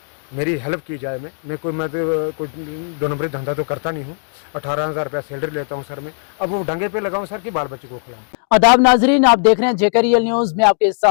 मेरी हेल्प की जाए। मैं कोई 2 नंबरी धंधा तो करता नहीं हूँ। 18,000 रुपया सैलरी लेता हूँ सर मैं। अब वो डंगे पे लगाऊँ सर कि बाल बच्चे को खिलाऊँ। आदाब नाजरीन, आप देख रहे हैं जेकेरियल न्यूज में आपके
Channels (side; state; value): right; silent; digital silence